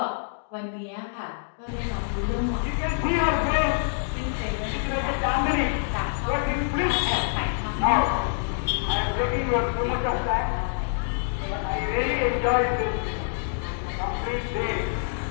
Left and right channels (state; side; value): silent; right; digital silence